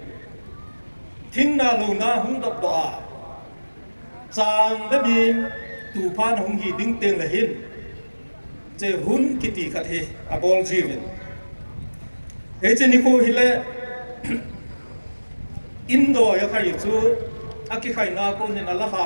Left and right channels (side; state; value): both; inverted; correlation -1.00